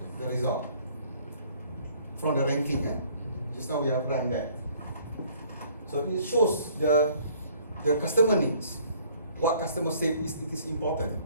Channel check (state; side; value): inverted; both; correlation -0.58